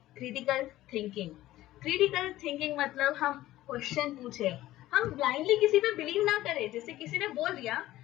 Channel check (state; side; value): quieter; right; 15.4 dB